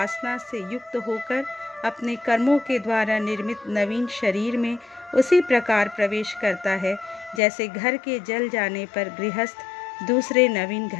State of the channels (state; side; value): drops out; right; at 7.4 s